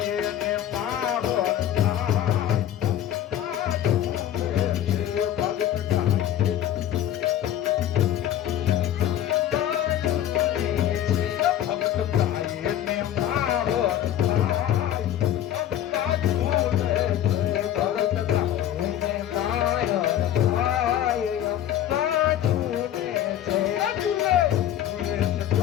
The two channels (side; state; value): right; quieter; 11.4 dB